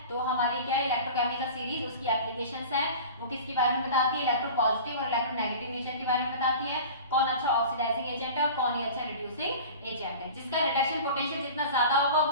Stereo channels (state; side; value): inverted; both; correlation -0.37